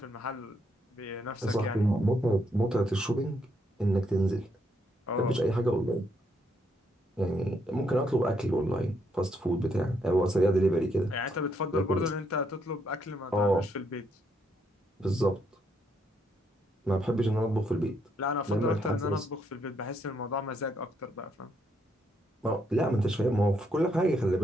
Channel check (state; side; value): normal; both; correlation 0.75